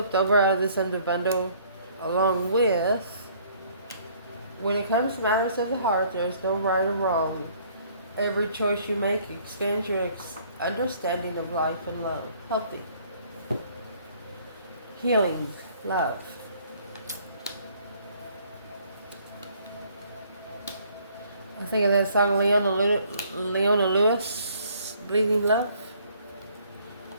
over out of this under bundle. Along with, when it comes to matters of the heart, there's no right or wrong. Every choice you make expands your understanding of life and love. Healthy. Healing. Love. I think of that song Leona Lewis, Bleeding Love.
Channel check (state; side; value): inverted; both; correlation -0.60